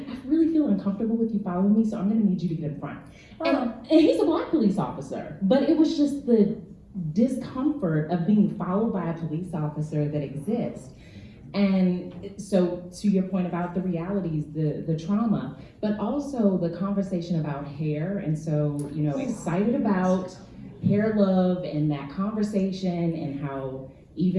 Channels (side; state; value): both; identical; correlation 1.00